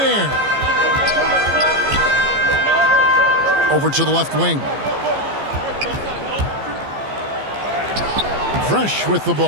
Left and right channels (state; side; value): late; left; 15 ms